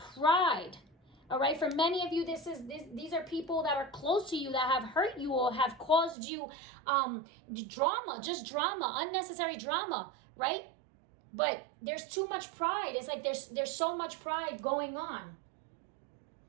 all right? For many of you, these are people that are close to you that have hurt you or have caused you drama, unnecessary drama, right? But there's too much pride. It's like there's so much pride going on.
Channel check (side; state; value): left; drops out; at 6.2 s